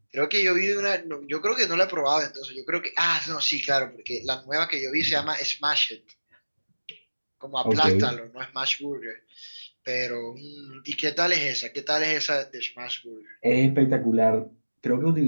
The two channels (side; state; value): both; inverted; correlation -1.00